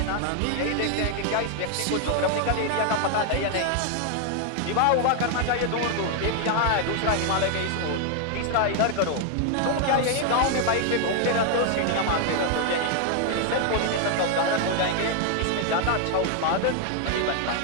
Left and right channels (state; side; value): different; both; correlation 0.00